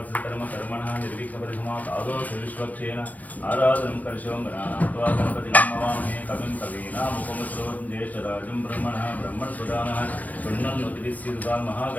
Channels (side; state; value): right; late; 0.076 ms